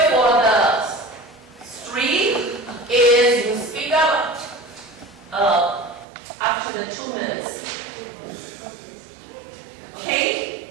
for the street is you speak up after the 2 minutes.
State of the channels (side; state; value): left; drops out; at 6.1 s